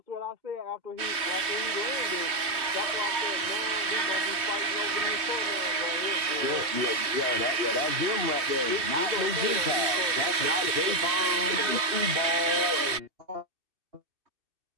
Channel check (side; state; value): left; late; 2.6 ms